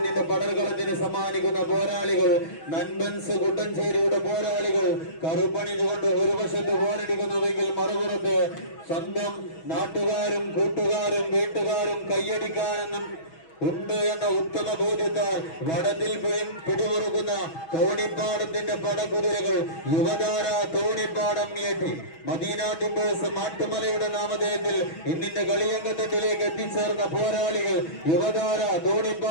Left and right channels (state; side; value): late; right; 6.2 ms